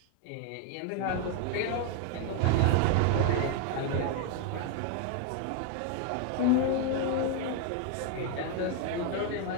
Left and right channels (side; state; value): both; different; correlation 0.01